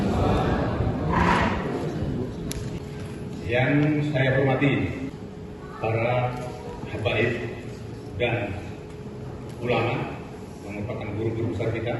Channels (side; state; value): both; identical; correlation 1.00